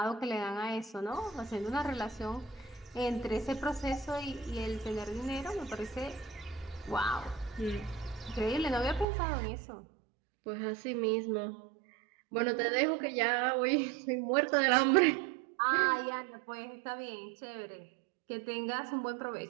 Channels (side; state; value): left; drops out; at 9.1 s